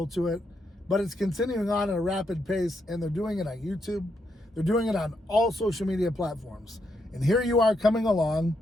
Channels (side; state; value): both; normal; correlation 0.79